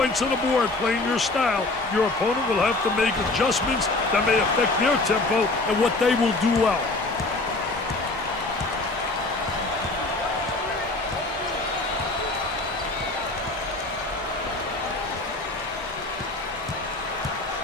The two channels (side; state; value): right; quieter; 3.0 dB